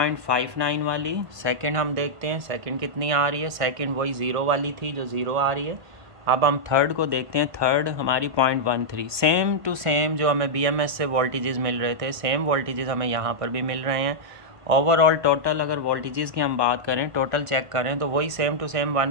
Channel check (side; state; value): left; late; 1.5 ms